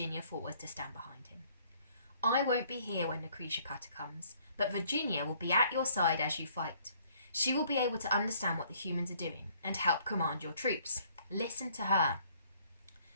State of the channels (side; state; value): both; inverted; correlation -0.61